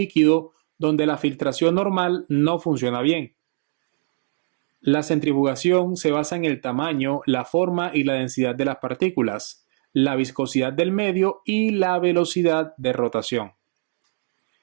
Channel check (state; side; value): silent; left; digital silence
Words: donde la filtración normal no funciona bien. La centrifugación se basa en el tamaño, la forma y la densidad de las partículas, la viscosidad del medio y la velocidad de rotación.